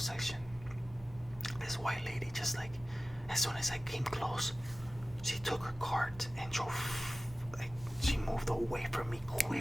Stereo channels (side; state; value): both; normal; correlation 0.96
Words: section. This white lady, just like, as soon as I came close, she took her cart and drove. Like, she moved away from me